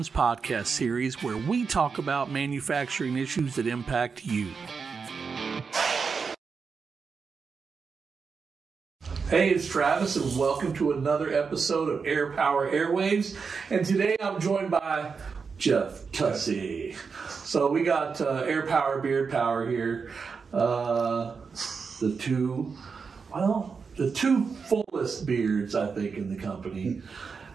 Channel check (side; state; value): left; quieter; 5.4 dB